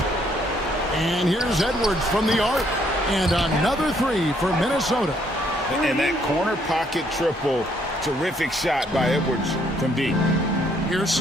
And here's Edwards from the arc. And another 3 for Minnesota. And that corner pocket triple, terrific shot by Edwards from deep. Here's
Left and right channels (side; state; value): both; normal; correlation 0.68